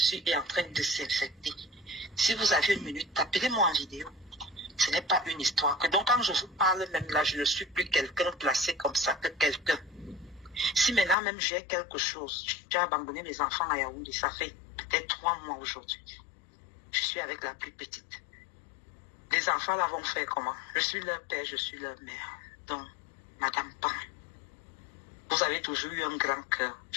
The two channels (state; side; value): drops out; right; at 11.2 s